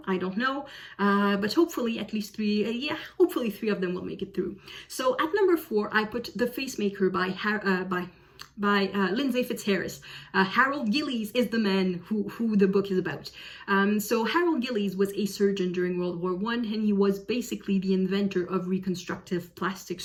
I don't know. But hopefully at least 3, hopefully 3 of them will make it through. So at number 4, I put The Facemaker by Lindsay Fitzharris. Harold Gillies is the man who the book is about. So Harold Gillies was a surgeon during World War I, and he was basically the inventor of reconstructive plastic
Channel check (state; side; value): identical; both; correlation 1.00